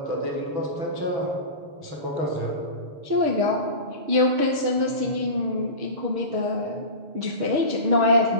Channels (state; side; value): late; left; 6.4 ms